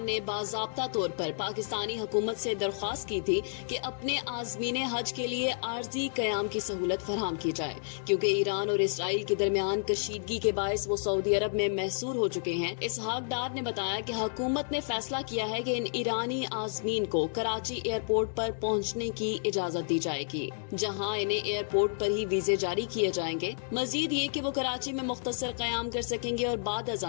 نے باضابطہ طور پر پاکستانی حکومت سے درخواست کی تھی کہ اپنے عازمین حج کے لیے عارضی قیام کی سہولت فراہم کی جائے کیونکہ ایران اور اسرائیل کے درمیان کشیدگی کے باعث وہ سعودی عرب میں محصور ہو چکے ہیں۔ اسحاق ڈار نے بتایا کہ حکومت نے فیصلہ کیا ہے کہ ان ایرانی عازمین کو کراچی ایئرپورٹ پر پہنچنے کی اجازت دی جائے گی جہاں انہیں ایئرپورٹ پر ہی ویزے جاری کیے جائیں گے۔ مزید یہ کہ وہ کراچی میں مختصر قیام کر سکیں گے اور بعد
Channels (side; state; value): right; silent; digital silence